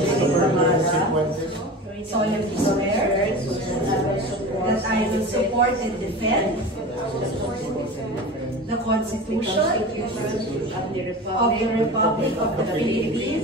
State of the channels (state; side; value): normal; both; correlation 0.32